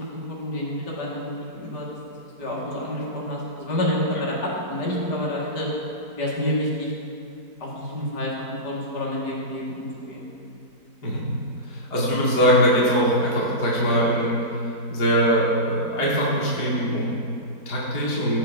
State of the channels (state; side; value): late; right; 4.5 ms